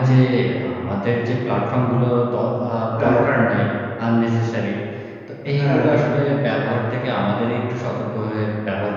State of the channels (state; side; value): identical; both; correlation 1.00